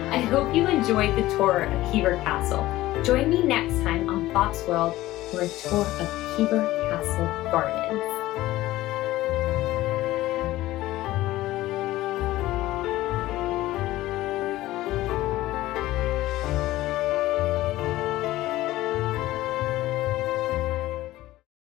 I hope you enjoyed the tour of Hever Castle. Join me next time on Bob's World for a tour of Hever Castle Gardens.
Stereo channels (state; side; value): quieter; right; 16.5 dB